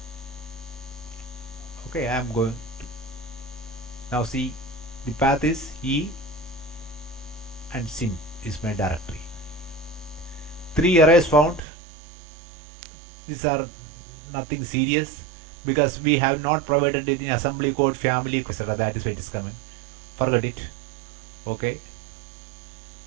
Okay, I am going to now see the path is E and sim is my directory. 3 arrays found. These are nothing serious because we have not provided it in assembly code, family, etc. That is why it is coming. Forget it. Okay.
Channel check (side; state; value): left; drops out; at 11.6 s